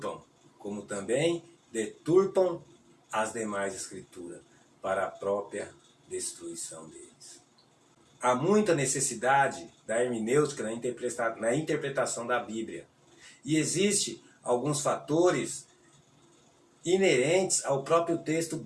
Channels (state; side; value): identical; both; correlation 1.00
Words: como também deturpam as demais escrituras, para a própria destruição deles. Há muita necessidade da hermenêutica na interpretação da Bíblia. E existe alguns fatores inerentes ao próprio texto